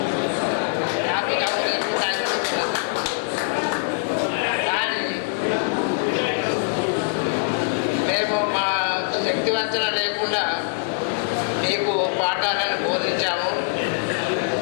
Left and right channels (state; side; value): silent; right; digital silence